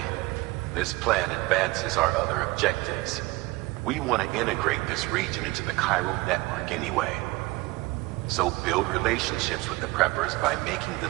this plan advances our other objectives. We want to integrate this region into the Cairo network anyway. So build relationships with the preppers by making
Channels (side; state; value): left; quieter; 21.6 dB